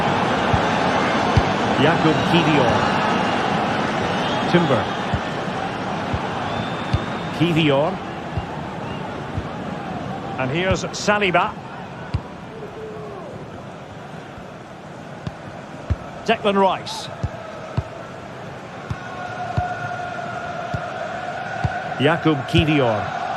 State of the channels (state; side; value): identical; both; correlation 1.00